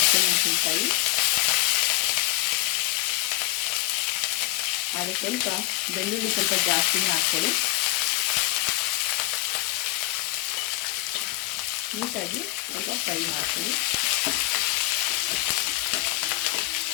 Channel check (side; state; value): right; quieter; 17.6 dB